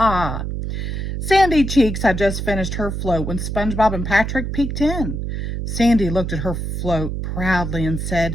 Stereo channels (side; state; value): right; noise; hum, 3 dB below the sound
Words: Sandy Cheeks had just finished her float when SpongeBob and Patrick peeked in. Sandy looked at her float proudly and